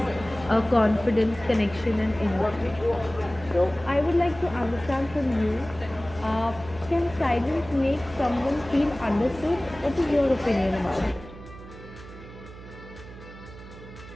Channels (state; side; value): noise; right; hum, 16 dB below the sound